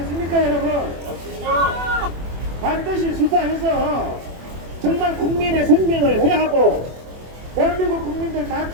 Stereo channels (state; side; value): late; left; 24 ms